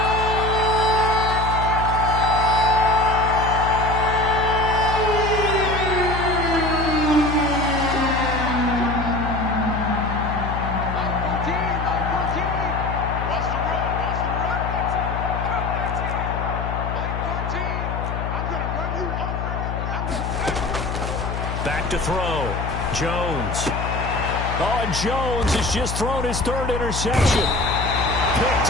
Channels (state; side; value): noise; left; hum, 4 dB below the sound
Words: Back to throw. Jones. Oh, and Jones has just thrown his 3rd interception.